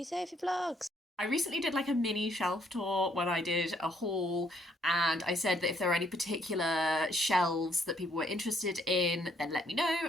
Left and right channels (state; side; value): normal; both; correlation 0.68